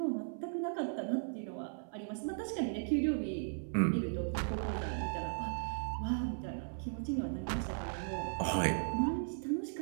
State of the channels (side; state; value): left; silent; 53 dB below the other